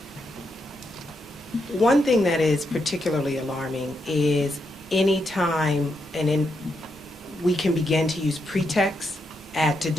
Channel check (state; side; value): normal; both; correlation 0.81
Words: One thing that is particularly alarming is any time we can begin to use pretext to